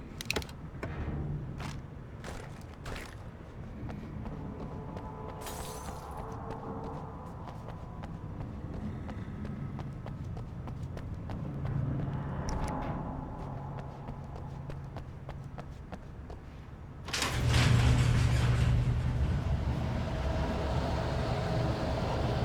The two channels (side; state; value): both; identical; correlation 1.00